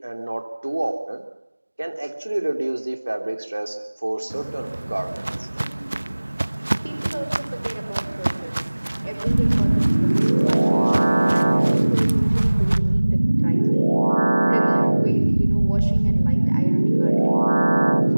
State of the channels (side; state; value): both; inverted; correlation -1.00